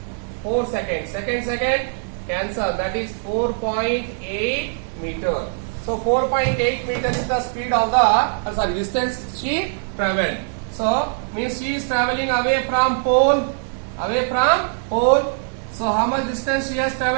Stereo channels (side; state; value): left; silent; 62 dB below the other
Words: 4 seconds. Second cancel. That is 4.8 meter. So 4.8 meter is the speed of the distance she traveled. So means she is traveling away from pole Away from pole. So how much distance she has